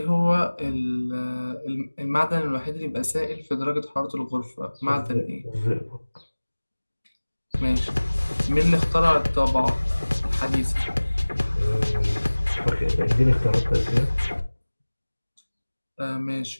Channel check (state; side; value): inverted; both; correlation -1.00